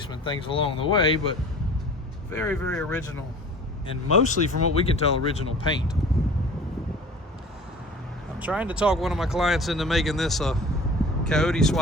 things along the way, but very, very original. And mostly, from what we can tell, original paint. I'm trying to talk one of my clients into making this a coyote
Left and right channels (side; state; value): both; normal; correlation 0.43